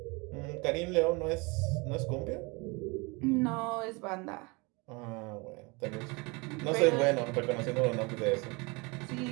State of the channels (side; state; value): left; quieter; 27.5 dB